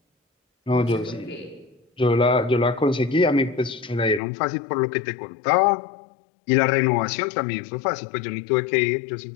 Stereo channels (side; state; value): right; drops out; at 4.2 s